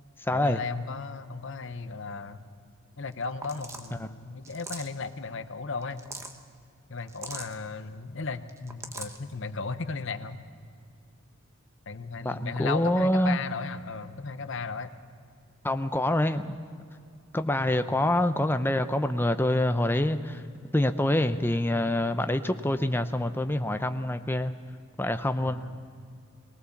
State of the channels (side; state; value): both; normal; correlation 0.75